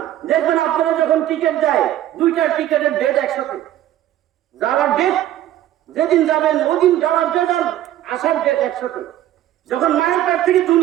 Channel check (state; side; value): quieter; left; 12.9 dB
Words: দেখবেন আপনারা যখন টিকিট দেয়, দুইটা টিকিটের ডেট একসাথে। যাওয়ার ডেট যেদিন যাবেন ওদিন যাওয়ার ডেট আর আসার ডেট একসাথে। যখন মায়ের পেট থেকে